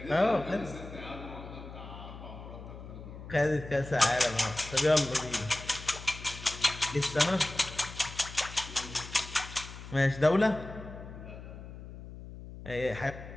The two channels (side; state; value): left; noise; hum, 13 dB below the sound